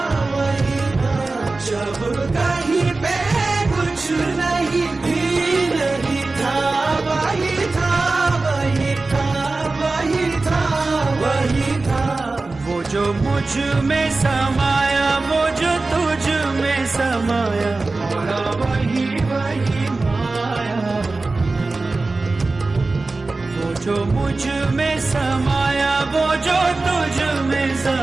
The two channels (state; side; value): quieter; left; 3.5 dB